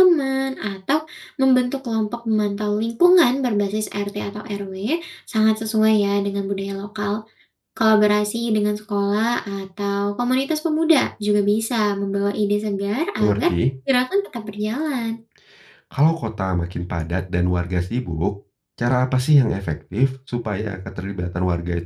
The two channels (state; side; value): identical; both; correlation 1.00